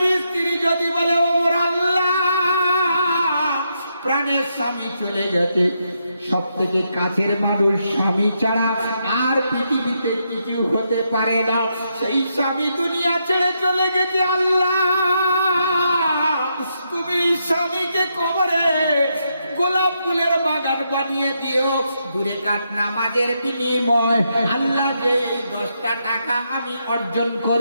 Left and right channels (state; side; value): inverted; both; correlation -0.80